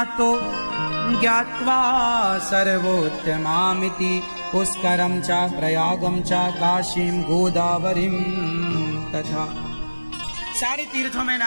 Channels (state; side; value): inverted; both; correlation -1.00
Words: ज्ञात्वा सर्वोत्तमामिति पुष्करम च प्रयागम च काशीम गोदावरीम तथा। सारे तीर्थों में